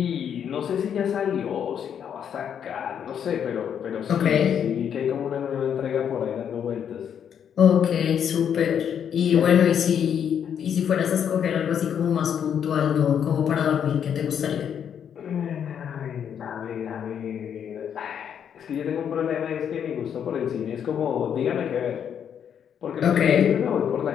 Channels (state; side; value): quieter; right; 8.4 dB